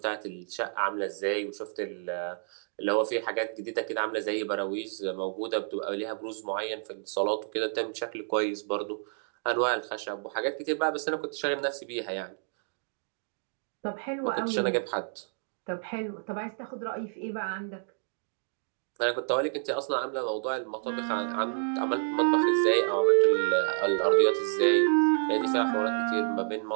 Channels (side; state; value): left; silent; digital silence